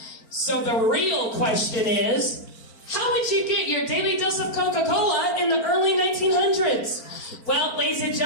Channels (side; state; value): right; late; 4.4 ms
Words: So the real question is, how would you get your daily dose of Coca-Cola in the early 1900s? Well, ladies and